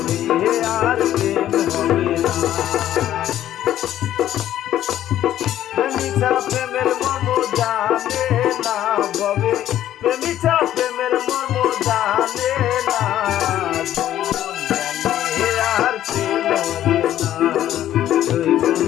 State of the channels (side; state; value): right; quieter; 12.2 dB